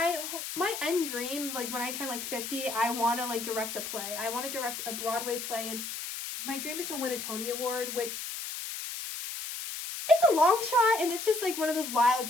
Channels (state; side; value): noise; left; hiss, 6 dB below the sound